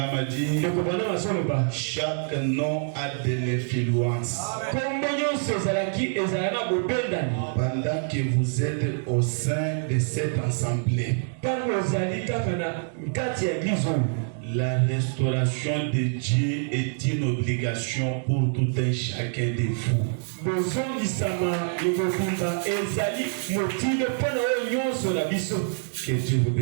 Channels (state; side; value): silent; left; 61 dB below the other